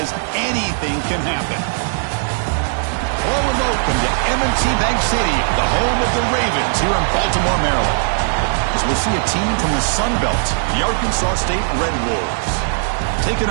anything can happen. Hello and welcome to M&T Bank Stadium, the home of the Ravens here in Baltimore, Maryland. As we'll see a team from the Sun Belt, the Arkansas State Red Wolves,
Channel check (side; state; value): left; silent; digital silence